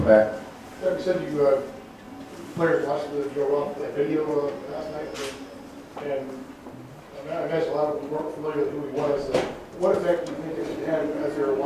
back. Yeah, you said you players watched the Joe Roth video last night, and I imagine a lot of them weren't familiar with who he was. What effect do you think it had as they were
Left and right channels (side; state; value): both; identical; correlation 1.00